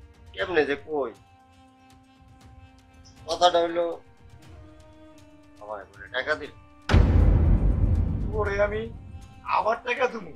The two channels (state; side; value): identical; both; correlation 1.00